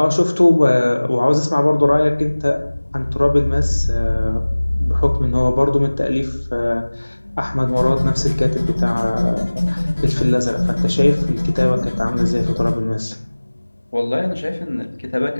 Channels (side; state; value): both; inverted; correlation -1.00